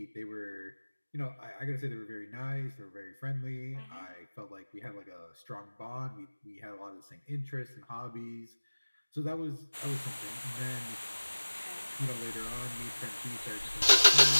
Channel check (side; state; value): both; inverted; correlation -1.00